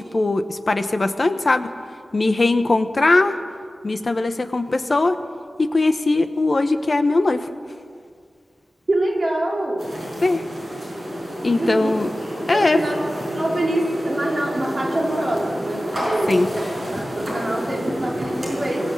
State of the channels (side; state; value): both; normal; correlation 0.96